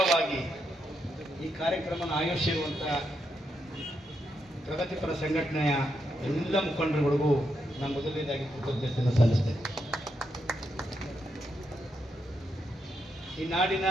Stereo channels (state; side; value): normal; both; correlation 0.81